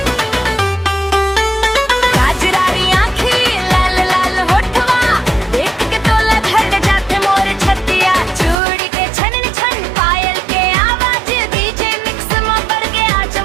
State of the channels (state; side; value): drops out; left; at 8.6 s